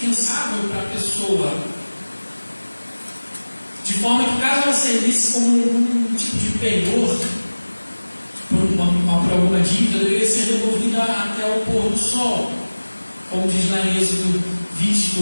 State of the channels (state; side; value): inverted; both; correlation -1.00